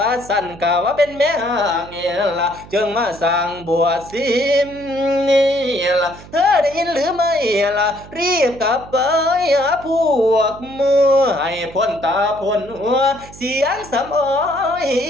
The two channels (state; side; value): noise; right; hum, 19 dB below the sound